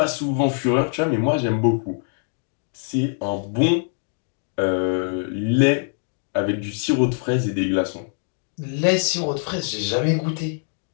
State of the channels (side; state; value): right; silent; 60 dB below the other